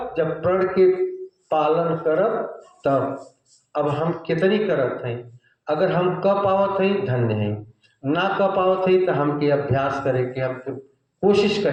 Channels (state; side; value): identical; both; correlation 1.00